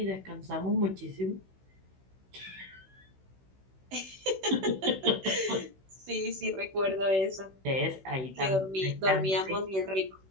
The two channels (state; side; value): late; left; 16 ms